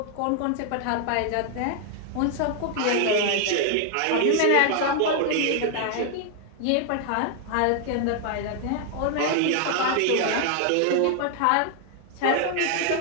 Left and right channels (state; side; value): different; both; correlation 0.00